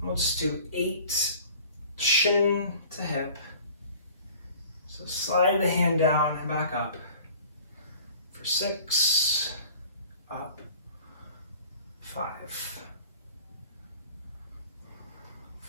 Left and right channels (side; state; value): both; inverted; correlation -0.47